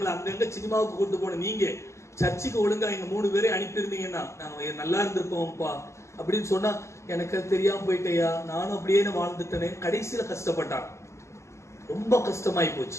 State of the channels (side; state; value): right; late; 0.14 ms